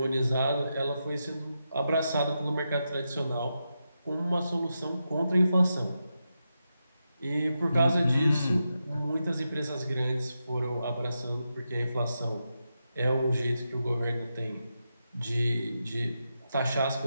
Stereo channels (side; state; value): both; inverted; correlation -0.87